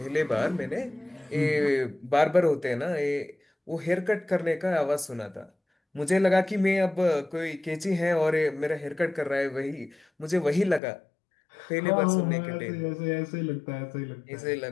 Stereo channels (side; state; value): right; drops out; at 10.8 s